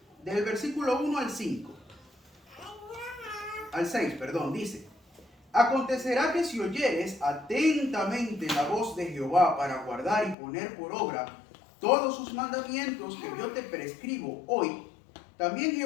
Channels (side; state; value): right; drops out; at 10.4 s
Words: Del versículo 1 al 5. Al 6, perdón, dice: Acontecerá que si oyeres atentamente la voz de Jehová para guardar y poner por obra todos sus mandamientos que yo te prescribo hoy, también